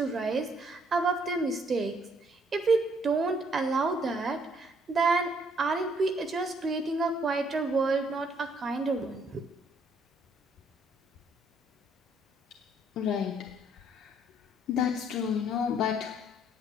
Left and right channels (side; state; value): both; normal; correlation 0.66